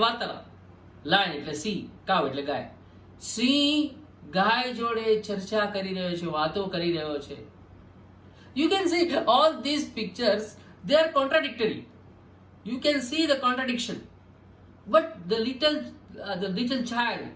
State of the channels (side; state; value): both; identical; correlation 1.00